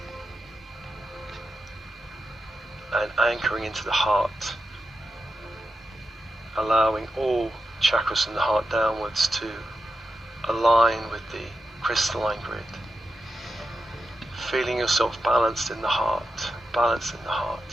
and anchoring into the heart, allowing all chakras in the heart downwards to align with the crystalline grid. Feeling yourself balanced in the heart, balanced in the heart.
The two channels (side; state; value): both; normal; correlation 0.89